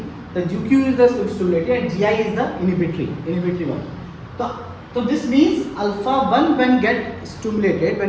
The GQ is the stimulatory and GI is the inhibitory one. So this means alpha 1 when get stimulated,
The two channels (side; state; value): both; identical; correlation 1.00